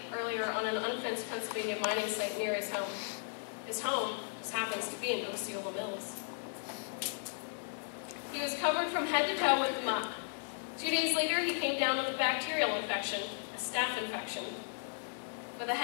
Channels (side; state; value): right; silent; 54 dB below the other